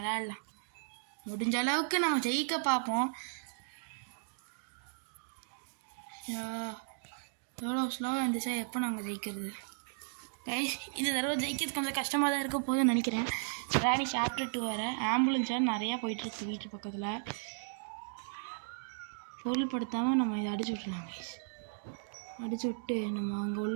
முடிஞ்ச அளவுக்கு நம்ம ஜெயிக்க பார்ப்போம். எவ்வளோ ஸ்லோவாக இருந்துச்சா எப்போ நாங்கள் ஜெயிக்கிறது கைஸ். இந்த தடவை ஜெயிக்கிறது கொஞ்சம் கஷ்டமாக தான் இருக்க போதுன்னு நினைக்கிறேன். ராணி சாப்டர் 2 வேறு ஆம்புலன்ஸாக நிறையா போயிட்டுருக்கு வீட்டு பக்கத்தில். பொருள்படுத்தாமல் நம்ம இதை அடிச்சு விட்றலாம் கைஸ். அடிச்சு விட்டு நம்ம அங்கே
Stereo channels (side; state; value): left; silent; digital silence